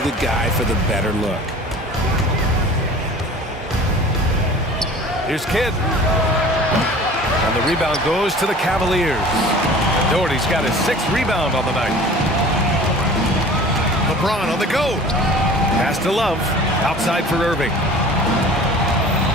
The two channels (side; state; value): both; normal; correlation 0.43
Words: the guy for the better look. Here's Kidd. And the rebound goes to the Cavaliers. Doherty's got his 6th rebound on the night. LeBron on the go. Pass to Love. Outside for Irving.